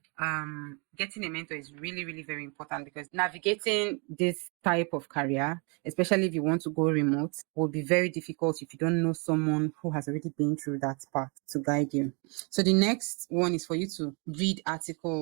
getting a mentor is really, really very important because navigating this type of career, especially if you want to go remote, will be very difficult if you don't know someone who has already been through that path to guide you. So the next one is for you to read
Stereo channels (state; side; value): quieter; left; 33.6 dB